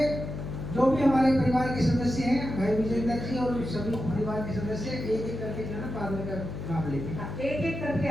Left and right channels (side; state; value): left; noise; hum, 6 dB below the sound